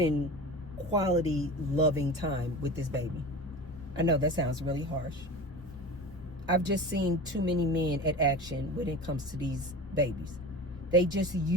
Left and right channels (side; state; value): both; normal; correlation 0.32